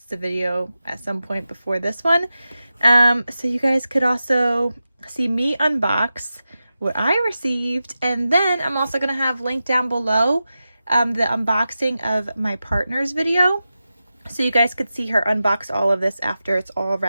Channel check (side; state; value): both; inverted; correlation -0.92